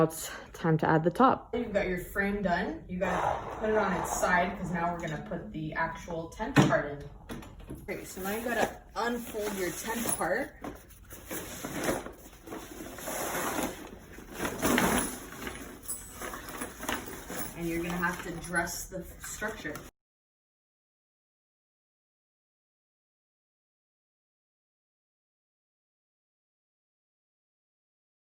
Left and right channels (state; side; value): identical; both; correlation 1.00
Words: it's time to add the top. You've got your frame done. You gotta put it on its side because now we're gonna put the actual tent part in. Okay, so now you gotta unfold your tent part. And you're gonna have to dress the structure.